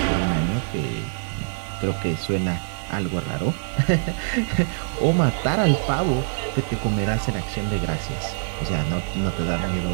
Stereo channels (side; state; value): left; silent; 59 dB below the other